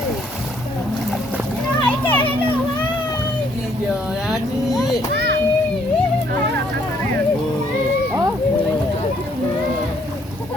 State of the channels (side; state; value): both; normal; correlation 0.67